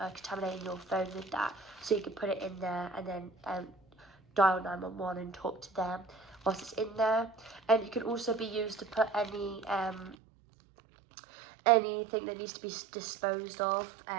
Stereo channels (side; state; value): left; drops out; at 10.2 s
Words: your phone with that, so you can put it in there and then dial 911 and talk to them whilst it's in there. And it can also be used to put anything that needs to be disposed of.